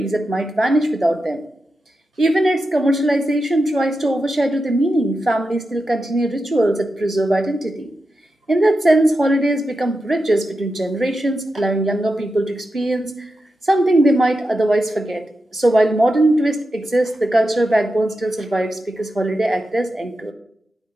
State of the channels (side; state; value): both; normal; correlation 0.89